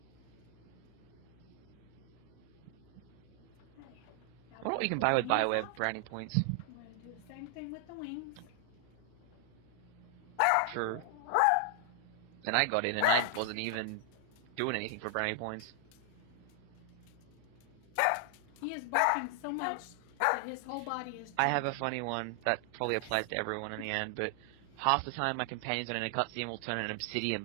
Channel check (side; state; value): both; different; correlation 0.00